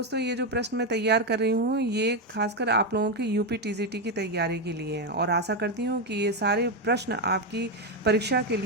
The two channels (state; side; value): normal; both; correlation 0.07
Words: ये जो प्रश्न मैं तैयार कर रही हूँ ये खासकर आप लोगों के यूपी टीजीटी की तैयारी के लिए हैं, और आशा करती हूँ कि ये सारे प्रश्न आपकी परीक्षा के